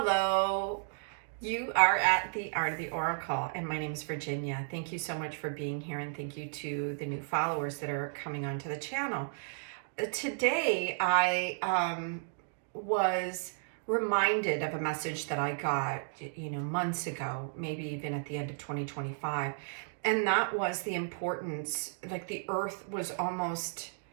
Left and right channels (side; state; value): left; silent; digital silence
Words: you are at the Art of the Oracle, and my name is Virginia. Thank you so much for being here, and thank you to the new followers that are coming onto the channel. Today, I was reminded of a message that I got, months ago, maybe even at the end of 2025, and that was the importance, like the earth was almost